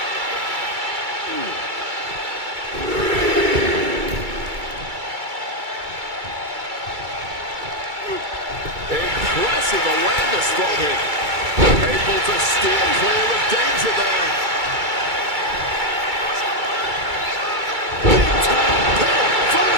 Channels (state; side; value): late; left; 2.3 ms